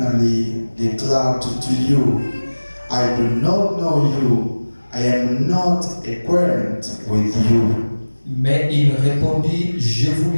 declare to you, I do not know you. I am not acquainted with you. Mais il répondit, je vous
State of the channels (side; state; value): both; inverted; correlation -1.00